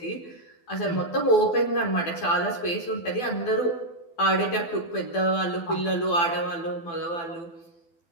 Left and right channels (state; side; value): late; right; 12 ms